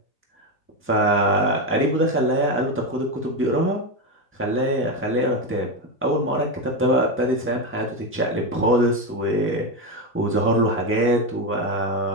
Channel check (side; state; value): both; normal; correlation 0.12